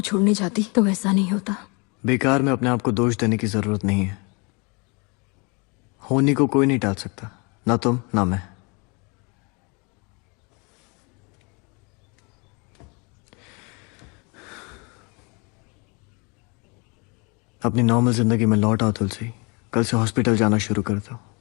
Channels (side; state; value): right; quieter; 30.7 dB